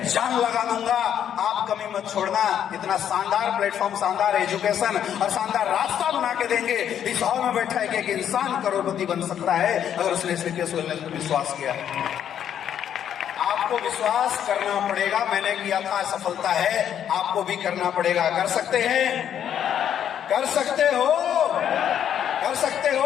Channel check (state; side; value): quieter; right; 9.5 dB